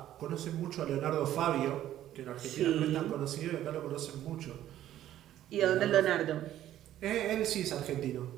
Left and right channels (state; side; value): quieter; left; 12.5 dB